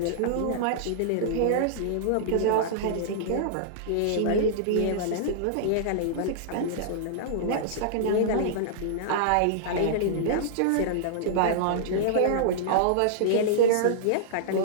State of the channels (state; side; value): different; both; correlation -0.02